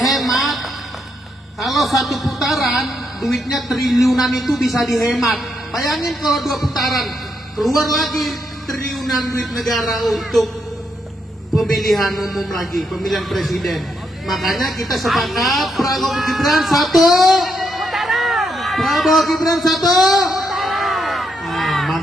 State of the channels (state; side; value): normal; both; correlation 0.79